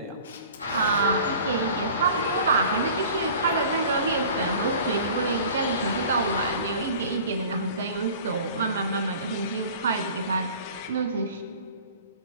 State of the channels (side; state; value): both; inverted; correlation -0.44